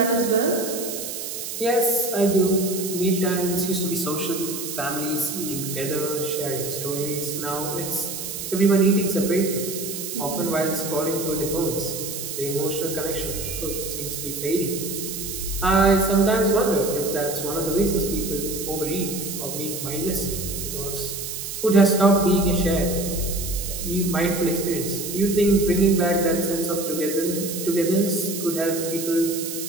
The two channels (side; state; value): right; noise; hiss, 6 dB below the sound